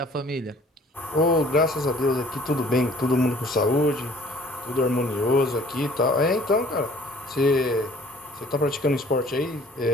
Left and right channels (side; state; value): both; normal; correlation 0.54